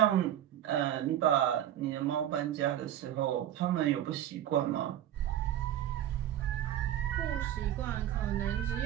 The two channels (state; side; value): quieter; left; 11.5 dB